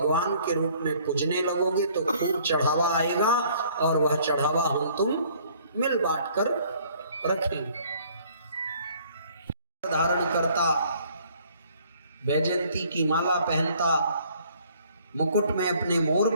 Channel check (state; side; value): inverted; both; correlation -0.58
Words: के रूप में पूजने लगोगे तो खूब चढ़ावा आएगा, और वह चढ़ावा हम तुम मिल बांट कर रखेंगे। धारण करता, वैजयंती की माला पहनता, मुकुट में अपने मोर